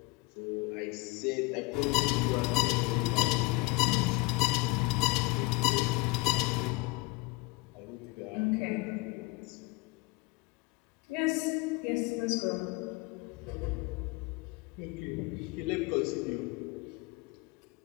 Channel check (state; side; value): quieter; right; 23.5 dB